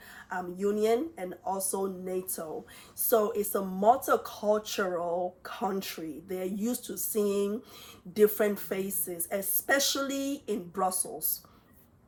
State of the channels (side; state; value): both; identical; correlation 1.00